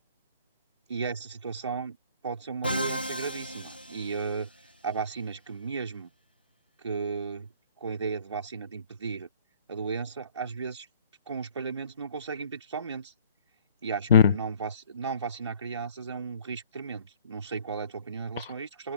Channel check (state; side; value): inverted; both; correlation -0.55